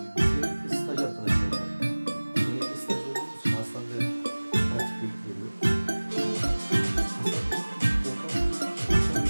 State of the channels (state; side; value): inverted; both; correlation -1.00